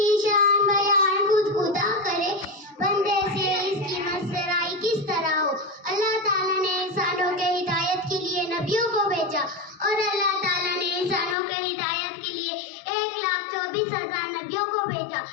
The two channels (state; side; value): drops out; right; at 11.4 s